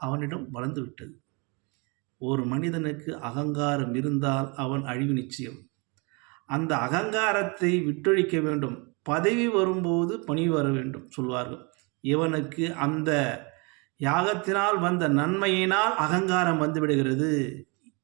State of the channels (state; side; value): quieter; left; 30.8 dB